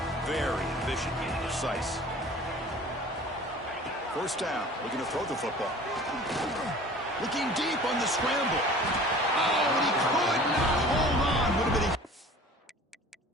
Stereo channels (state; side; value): normal; both; correlation 0.45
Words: very efficient and precise. First down, looking to throw the football. Looking deep on the scramble. Oh, and he could not hold on. Would have been a